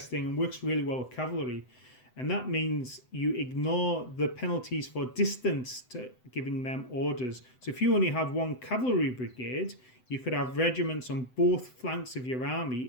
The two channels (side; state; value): right; late; 7.9 ms